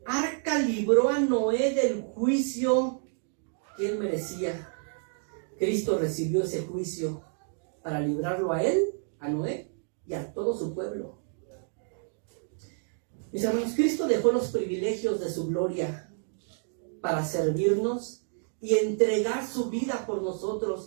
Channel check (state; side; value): silent; left; 56 dB below the other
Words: arca libró a Noé del juicio que él merecía. Cristo recibió ese juicio para librarlo a él, a Noé y a todo su pueblo. Mis hermanos, Cristo dejó los privilegios de su gloria para servirnos y entregar su vida por